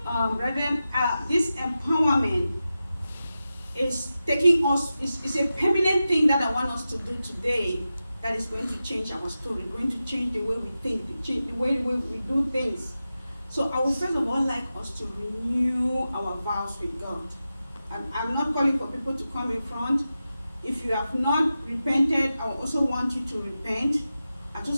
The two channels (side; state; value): both; inverted; correlation -0.92